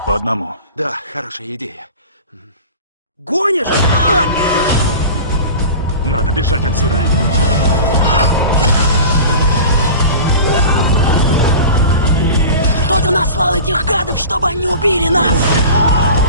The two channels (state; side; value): inverted; both; correlation -0.35